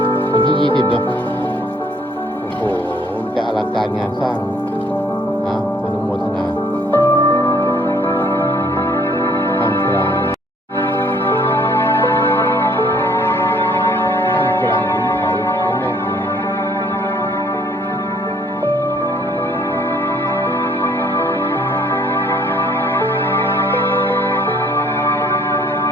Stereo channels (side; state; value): both; normal; correlation 0.61